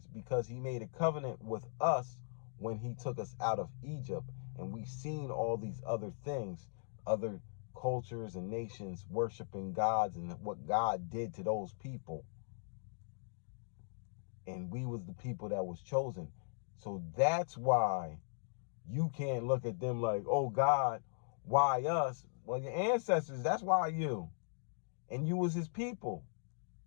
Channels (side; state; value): right; silent; digital silence